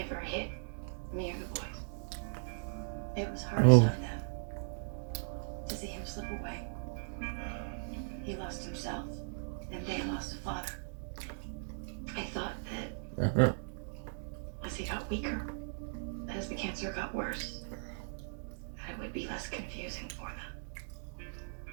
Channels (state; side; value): silent; left; digital silence